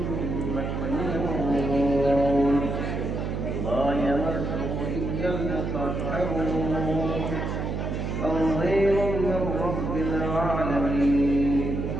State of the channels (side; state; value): right; noise; hum, 3 dB below the sound